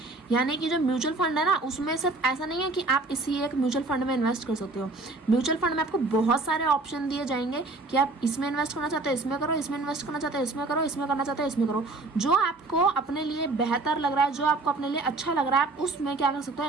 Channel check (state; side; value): quieter; left; 3.3 dB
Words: यानी कि जो mutual fund है ना, उसमें सिर्फ ऐसा नहीं है कि आप इसी एक म्यूचुअल फंड में इन्वेस्ट कर सकते हो। म्यूचुअल फंड में आपको बहुत सारे ऑप्शन दिए जाएंगे कि आप इसमें इन्वेस्ट करना चाहते हो इसमें करो, इसमें इन्वेस्ट करना चाहते हो इसमें करो, इसमें करना चाहते हो इसमें करो। जो आपको अपने लिए बेहतर लग रहा है, जो आपको अपने लिए अच्छा लग रहा है, आप उसमें क्या कर सकते हो,